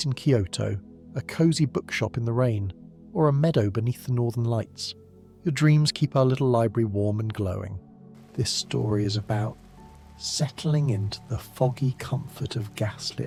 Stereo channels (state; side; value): identical; both; correlation 1.00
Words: in Kyoto, a cozy bookshop in the rain, or a meadow beneath the northern lights. Your dreams keep our little library warm and glowing. This story is about settling into the foggy comfort of